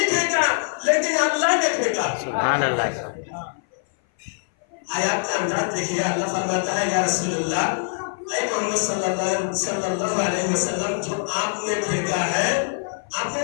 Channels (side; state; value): right; silent; 58 dB below the other